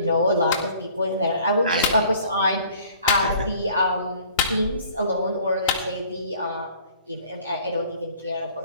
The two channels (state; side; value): inverted; both; correlation -0.53